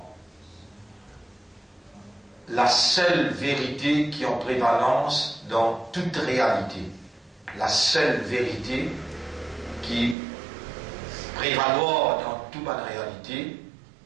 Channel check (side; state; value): left; drops out; at 10.2 s